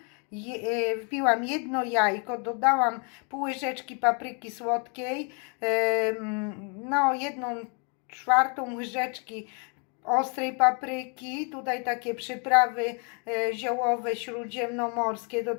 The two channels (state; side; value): quieter; right; 36.6 dB